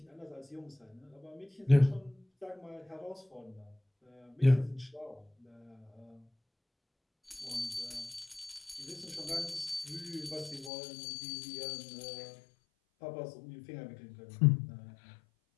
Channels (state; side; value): drops out; right; at 10.7 s